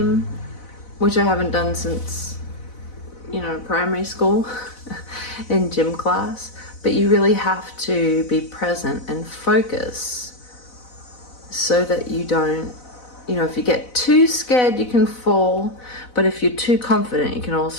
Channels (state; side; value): late; right; 4.0 ms